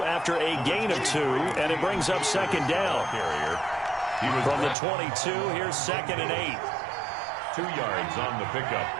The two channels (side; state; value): left; drops out; at 4.8 s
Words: after a gain of 2, and it brings up second down. From the 22, here's 2nd and 8. 2 yards on the pickup.